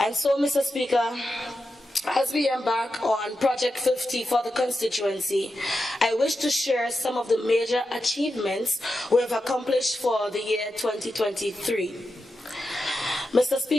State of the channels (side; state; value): both; normal; correlation 0.89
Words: so, Mr. Speaker, as we embark on Project 50 for the constituency, I wish to share some of the major achievements we have accomplished for the year 2023. Mr.